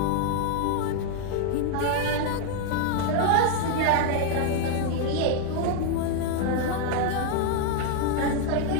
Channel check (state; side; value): different; both; correlation 0.00